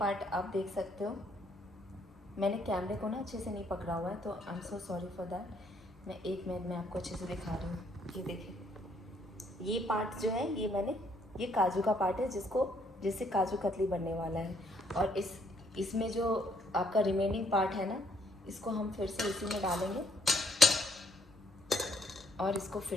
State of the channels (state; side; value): normal; both; correlation 0.68